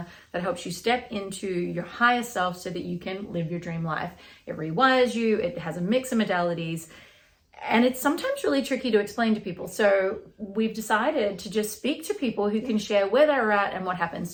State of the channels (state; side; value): identical; both; correlation 1.00